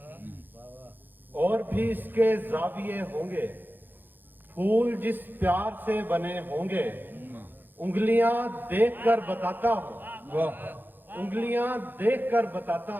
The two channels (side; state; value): left; late; 0.092 ms